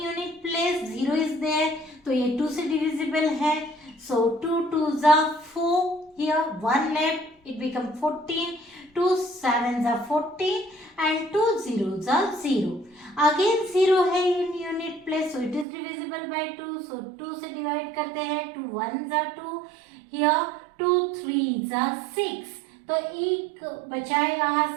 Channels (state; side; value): drops out; left; at 15.7 s